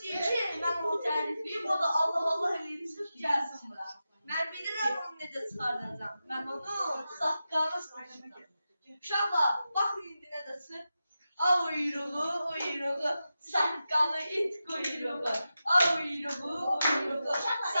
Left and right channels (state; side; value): inverted; both; correlation -0.91